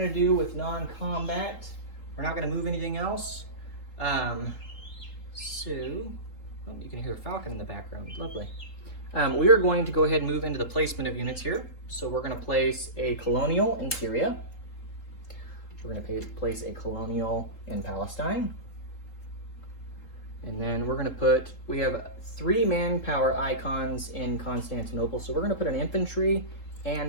do with non-combat. We're not gonna move anything else. You can hear a falcon in the background. Lovely. We are going to go ahead and move into the placement of units here. So we're going to place a colonial in Syria. We're going to place a colonial in Palestine. And then we're going to we have 3 manpower icons in Constantinople. So we're going to put an infantry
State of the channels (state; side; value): late; right; 3.8 ms